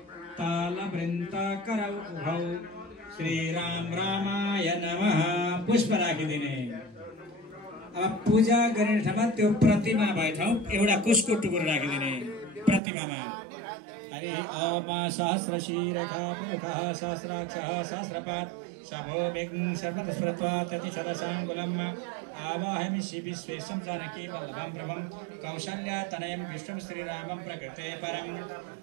तालवृन्दाकरौ उभौ श्रीराम रामाय नमः। पुष्प राखिदिने। अब पूजा गर्ने ठाउँमा त्यो प्रतिमा भए ठाउँ एउटा कुशको टुक्रो राखिदिने प्रतिमामा। हरि ओम सहस्रशीरखा पुरुखः सहस्राक्षः सहस्रपात् शभो विघ्नं सर्वतस्वरत्वा ततिशतशराङ्गुलम् आवाहयामि विश्वेशं जानकी वल्लभं प्रभं कौशल्यातनयं विष्णुं श्रीरामं प्रकृते परं।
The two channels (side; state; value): left; drops out; at 12.8 s